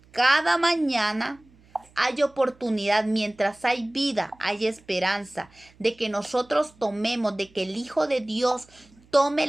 cada mañana hay oportunidad, mientras hay vida, hay esperanza de que nosotros tomemos, de que el Hijo de Dios tome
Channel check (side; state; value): right; noise; hum, 29 dB below the sound